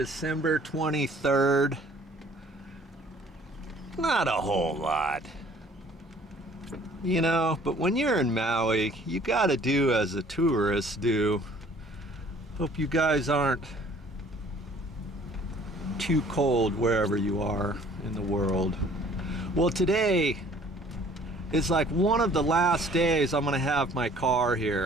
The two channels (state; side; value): normal; both; correlation 0.55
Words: 23rd? Not a whole lot. You know, but when you're in Maui, you gotta do as the tourists do. Hope you guys aren't too cold wherever you are in the world. Well, today is like one of the last days I'm gonna have my car